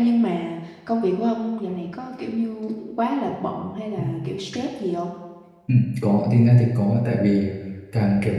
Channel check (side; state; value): both; identical; correlation 1.00